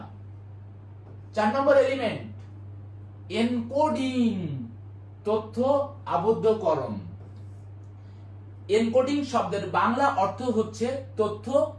4 নম্বর এলিমেন্ট এনকোডিং, তথ্য আবদ্ধকরণ। এনকোডিং শব্দের বাংলা অর্থ হচ্ছে তথ্য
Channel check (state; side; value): identical; both; correlation 1.00